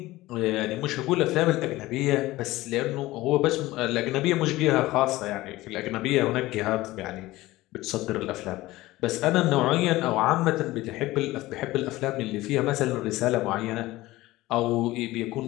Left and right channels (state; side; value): quieter; right; 18.2 dB